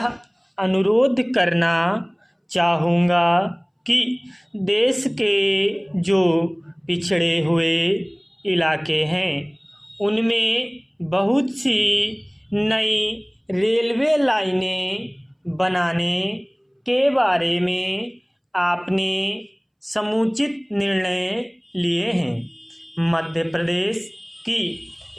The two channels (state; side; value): identical; both; correlation 1.00